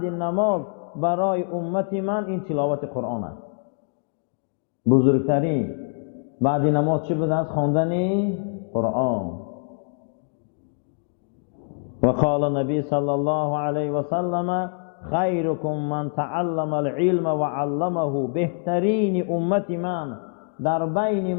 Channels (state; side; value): silent; right; digital silence